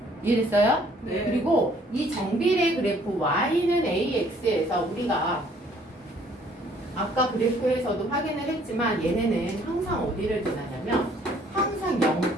이해됐어요? 네. 그리고 이 정비례 그래프 y는 ax에서 우리가 아까 그래프에서도 확인을 했지만 얘네는 항상 어디를 지나냐면 항상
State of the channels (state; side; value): normal; both; correlation 0.60